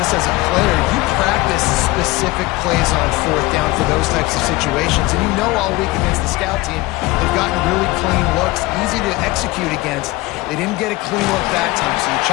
as a player. You practice specific plays on fourth down for those types of situations. And you know all week against the scout team, they've gotten really clean looks, easy to execute against. They didn't get a clean look that time. So you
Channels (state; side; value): quieter; right; 20.4 dB